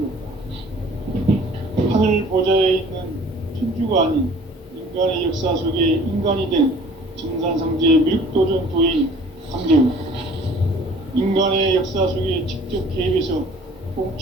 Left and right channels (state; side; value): normal; both; correlation 0.51